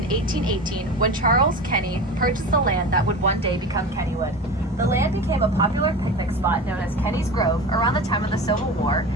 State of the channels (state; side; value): normal; both; correlation 0.31